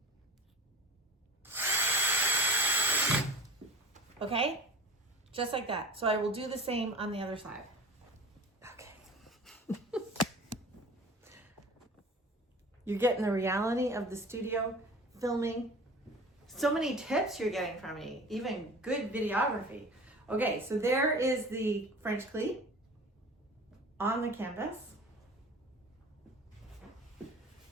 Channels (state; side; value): normal; both; correlation 0.38